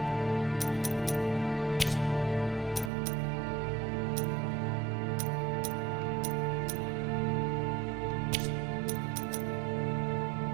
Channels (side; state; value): left; drops out; at 2.9 s